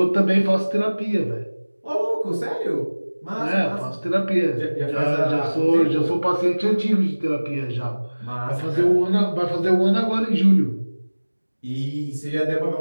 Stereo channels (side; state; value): both; inverted; correlation -1.00